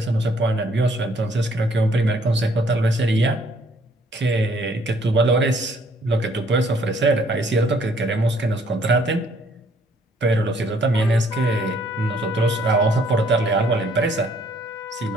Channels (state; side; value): normal; both; correlation 0.63